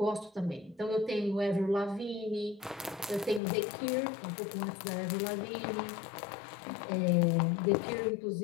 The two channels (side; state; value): right; drops out; at 3.4 s